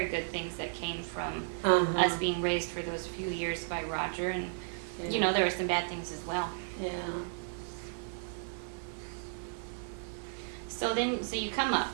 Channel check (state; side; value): silent; left; digital silence